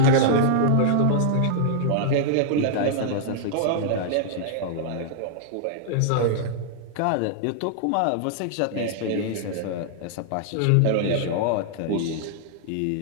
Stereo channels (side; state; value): both; different; correlation -0.01